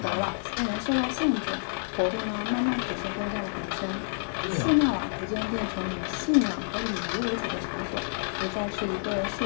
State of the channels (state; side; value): silent; right; digital silence